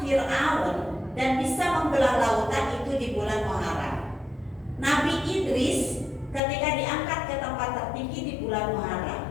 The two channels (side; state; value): right; drops out; at 6.4 s